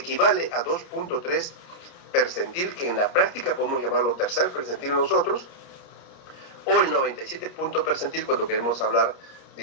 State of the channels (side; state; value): right; late; 29 ms